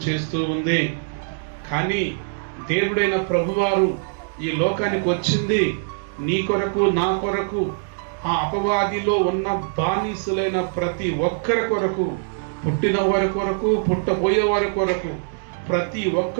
చేస్తూ ఉంది. కానీ దేవుడైన ప్రభువారు ఈ లోకానికి వచ్చింది నీ కొరకు, నా కొరకు, ఆ అపవాదిలో ఉన్న బానిసులైన ప్రతి ఒక్కరి కొరకు, పుట్టిన వారి కొరకు, పుట్టబోయే వారి కొరకు, ప్రతి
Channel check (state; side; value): silent; left; 64 dB below the other